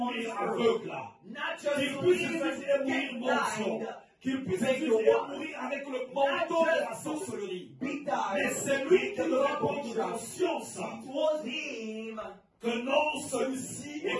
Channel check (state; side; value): identical; both; correlation 1.00